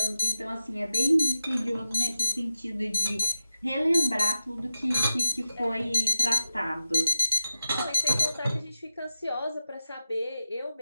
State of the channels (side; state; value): both; inverted; correlation -0.89